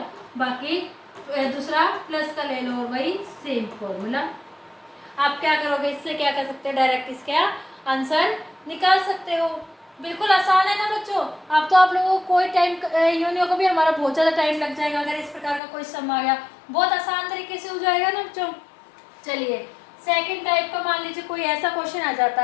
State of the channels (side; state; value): right; drops out; at 15.6 s